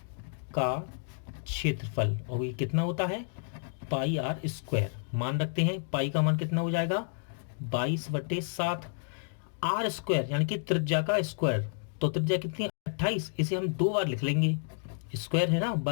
का क्षेत्रफल, और ये कितना होता है? पाई आर स्क्वायर। मान रखते हैं, पाई का मान कितना हो जाएगा? 22/7। आर स्क्वायर यानी कि त्रिज्या का स्क्वायर। तो त्रिज्या कितनी? 28। इसे हम 2 बार लिख लेंगे। स्क्वायर है ना,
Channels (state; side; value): silent; right; digital silence